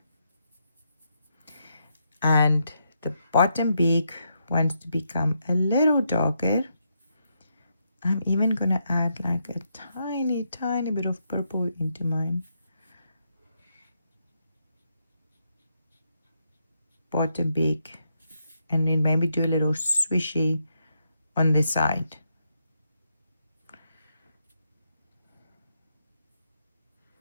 And the bottom beak wants to become a little darker. I'm even going to add like a tiny bit of purple into mine. Bottom beak. And then maybe do a little swishy on the side.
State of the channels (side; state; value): both; inverted; correlation -0.80